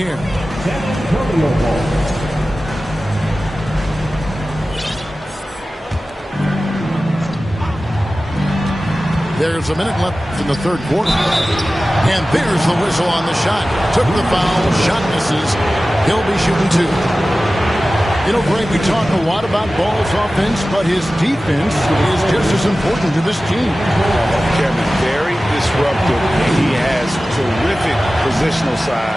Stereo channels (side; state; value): both; normal; correlation 0.96